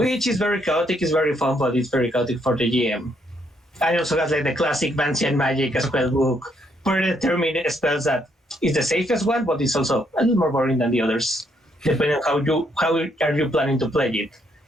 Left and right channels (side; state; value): both; normal; correlation 0.73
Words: is very chaotic, it's very fun, but it's very chaotic for the GM. I also have like the classic Vancian magic spell book, predetermined spells that is the safest one, but it's also a little more boring than the others, depending on how are you planning to play it.